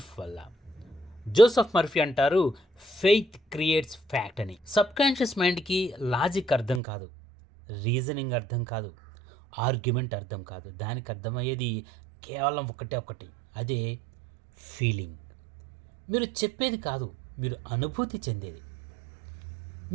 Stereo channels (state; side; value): drops out; left; at 6.8 s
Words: వల్ల. జోసెఫ్ మర్ఫీ అంటారు, ఫెయిత్ క్రియేట్స్ ఫ్యాక్ట్ అని. సబ్ కాన్షియస్ మైండ్కి లాజిక్ అర్థం కాదు, రీజనింగ్ అర్థం కాదు, ఆర్గ్యుమెంట్ అర్థం కాదు. దానికి అర్థమయ్యేది కేవలం ఒకటి, అదే ఫీలింగ్. మీరు చెప్పేది కాదు, మీరు అనుభూతి చెందేది.